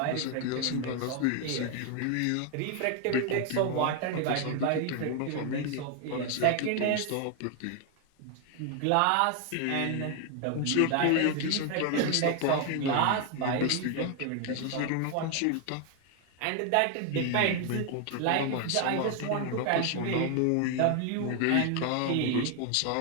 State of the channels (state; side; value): different; both; correlation 0.01